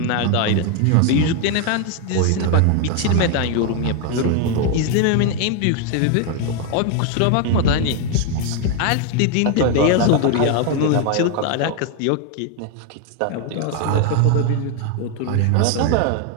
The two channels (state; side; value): different; both; correlation 0.01